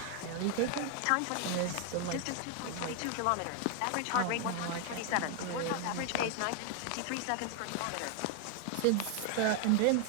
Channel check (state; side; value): different; both; correlation 0.00